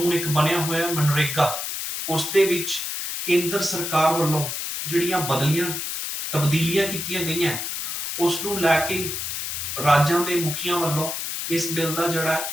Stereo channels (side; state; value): left; noise; hiss, 4 dB below the sound